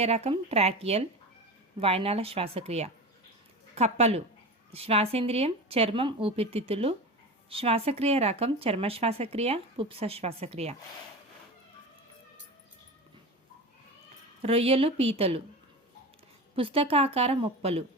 రకం ట్రాకియల్ వాయునాళ శ్వాసక్రియ. కప్పలు శ్వాసేంద్రియం చర్మం ఊపిరితిత్తులు, శ్వాసక్రియ రకం చర్మ శ్వాసక్రియ పుప్స శ్వాసక్రియ. రొయ్యలు పీతలు పుస్తకాకార మొప్పలు,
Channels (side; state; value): both; normal; correlation 0.28